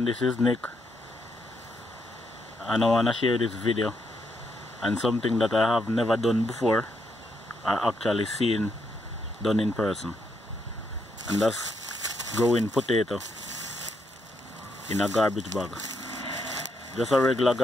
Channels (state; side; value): normal; both; correlation 0.78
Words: this is Nick and I want to share this video and something that I have never done before or actually seen done in person, and that's growing potato in a garbage bag. Just a regular